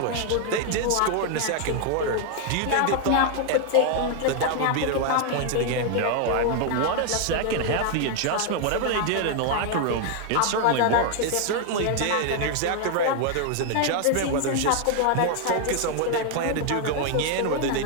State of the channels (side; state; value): both; different; correlation 0.00